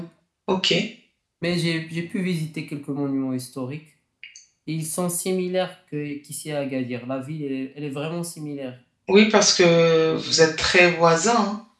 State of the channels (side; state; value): both; identical; correlation 1.00